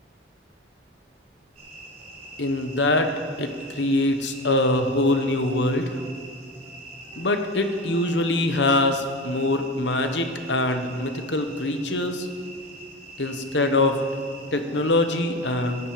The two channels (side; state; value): both; normal; correlation 0.24